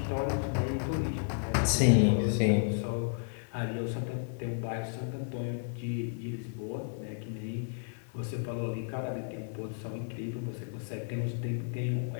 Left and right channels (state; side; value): silent; right; 56 dB below the other